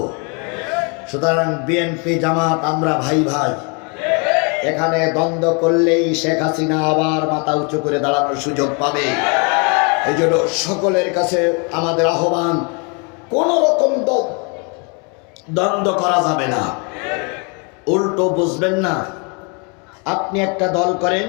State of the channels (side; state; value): right; quieter; 34.1 dB